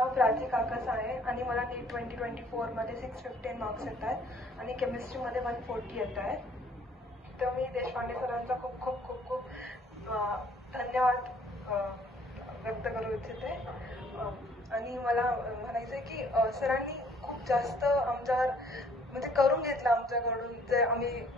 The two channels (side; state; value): both; normal; correlation 0.60